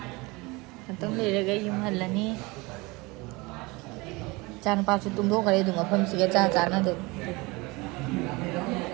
Tông ꯂꯩꯔꯒ ꯌꯨꯝ ꯍꯜꯂꯅꯤ ꯏꯆꯥ ꯅꯨꯄꯥꯁꯨ ꯇꯨꯝꯊꯣꯛꯈ꯭ꯔꯦ ꯑꯗꯨꯝ ꯃꯐꯝꯁꯤꯒ ꯆꯥꯟꯅꯗꯦ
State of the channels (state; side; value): quieter; left; 24.4 dB